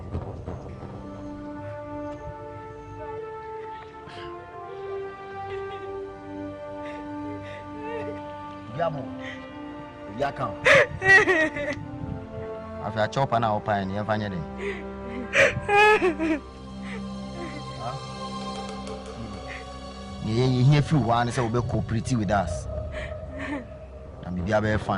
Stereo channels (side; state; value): both; identical; correlation 1.00